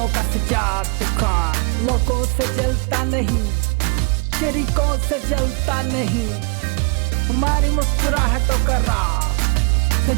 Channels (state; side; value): quieter; left; 32.1 dB